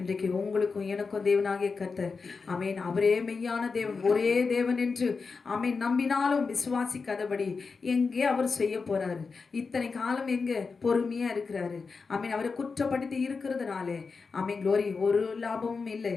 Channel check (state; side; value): quieter; right; 4.7 dB